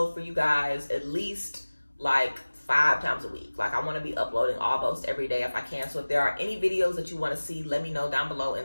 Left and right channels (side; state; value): both; inverted; correlation -1.00